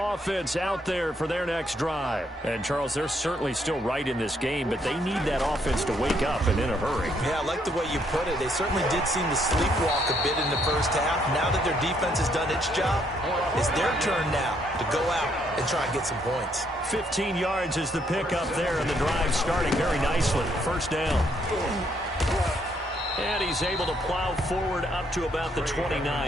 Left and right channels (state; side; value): normal; both; correlation 0.71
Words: offense out there for their next drive. And, Charles, they're certainly still right in this game, but they need that offense to wake up and in a hurry. Yeah, I like the way you put it. They certainly did seem to sleepwalk a bit in the first half. Now that their defense has done its job, it's their turn now to go out and try and get some points. 15 yards is the pickup there, and the drive starting very nicely. First down. And he's able to plow forward up to about the